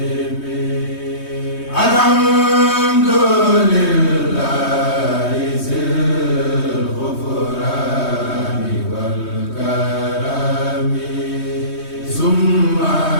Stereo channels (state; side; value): late; right; 3.2 ms